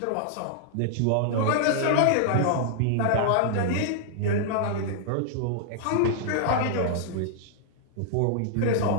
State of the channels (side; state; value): both; different; correlation -0.01